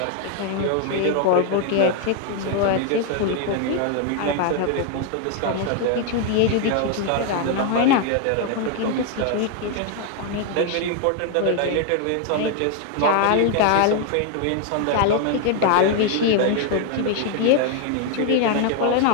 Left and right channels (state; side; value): different; both; correlation 0.00